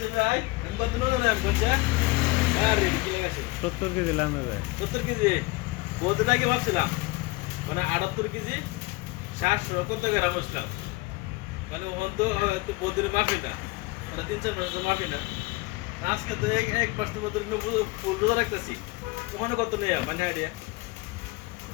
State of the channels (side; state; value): right; quieter; 23.2 dB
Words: ভাই আমি কত নজন আম করছে আরে কি লাগাছে 70 কেজি লামে ভাই 70 কেজি বহুদিন আগে ভাবছিলাম মানে 78 কেজি 700 কত গ্রাম আসলাম মানে ওখান তো বহুদিনের মাফি না মানে 3-4 মাসের মাফি না আজকে তো এক মাস তো মতো ফুল রোজা রাখতেছি ওখানে কত নেই মানে আইডিয়া